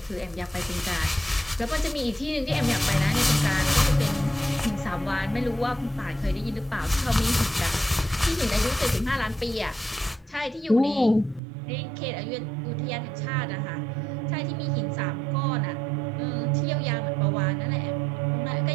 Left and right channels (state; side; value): drops out; left; at 11.4 s